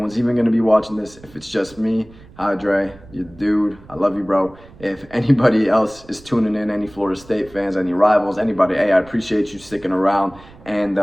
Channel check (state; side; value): noise; right; rumble, 22 dB below the sound